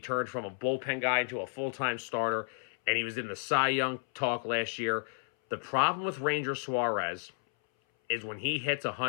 from a bullpen guy into a full-time starter, and he was in the Cy Young talk last year. The problem with Ranger Suarez is when he hits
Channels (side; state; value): right; silent; 56 dB below the other